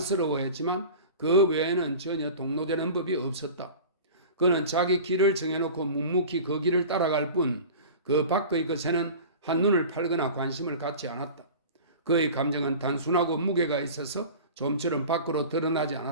그 외에는 전혀 동로되는 법이 없었다. 그는 자기 길을 정해놓고 묵묵히 그 길을 따라갈 뿐 그 밖의 것에는 한눈을 팔거나 관심을 갖지 않았다. 그의 감정은 단순하고 무게가 있어서 좀처럼 밖으로 드러나지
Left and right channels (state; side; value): inverted; both; correlation -0.37